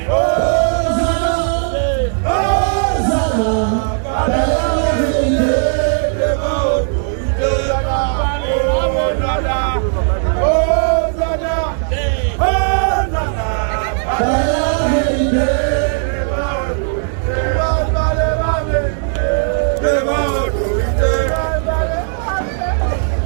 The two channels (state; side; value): silent; left; digital silence